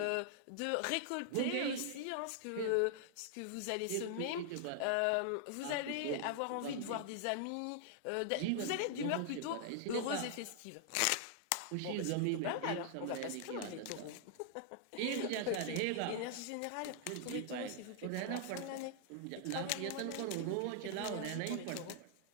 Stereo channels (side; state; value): both; different; correlation -0.01